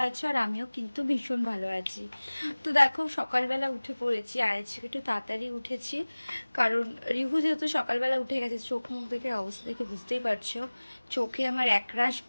আছো, আর আমিও কিন্তু ভীষণ ভালো আছি। তো দেখো, সকালবেলা উঠে পড়েছি, আর আজকে একটু তাড়াতাড়ি উঠেছি, কারণ রিভু যেহেতু সকালবেলা উঠে গেছে। চোখ মুখ দেখে অবস্থা দেখে বুঝতেই পারছো, চোখে আমার একরাশ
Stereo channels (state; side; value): inverted; both; correlation -1.00